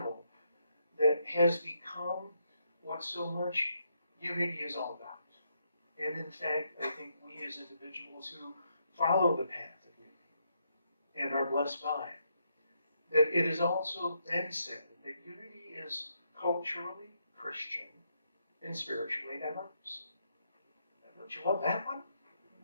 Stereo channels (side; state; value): both; inverted; correlation -0.77